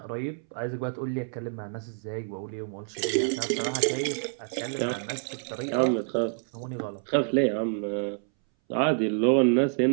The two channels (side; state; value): left; silent; 59 dB below the other